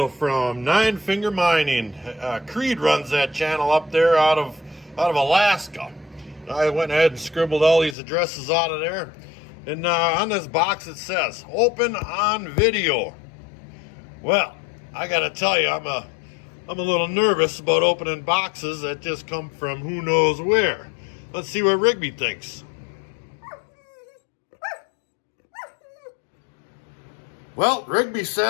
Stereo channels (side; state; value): right; drops out; at 8.0 s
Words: from Nine Finger Mining. Creed runs that channel up there out of Alaska. I went ahead and scribbled all these addresses out of there. And on this box it says, open on video. Well, I gotta tell you, I'm a little nervous about opening boxes that just come from who knows where. Let's see what Rigby thinks. Well, Rigby